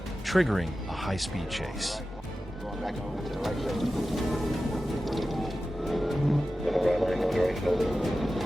triggering a high-speed chase. Going back over to the right shoulder.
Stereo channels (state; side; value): normal; both; correlation 0.94